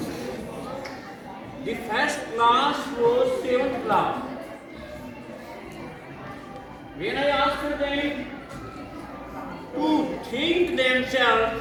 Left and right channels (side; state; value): both; identical; correlation 1.00